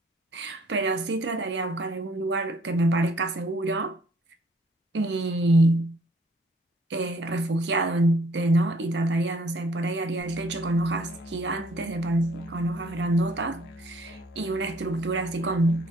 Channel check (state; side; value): normal; both; correlation 0.61